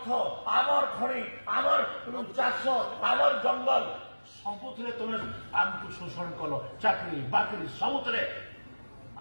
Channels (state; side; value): inverted; both; correlation -1.00